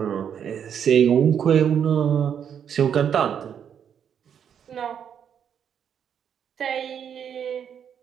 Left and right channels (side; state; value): left; quieter; 8.3 dB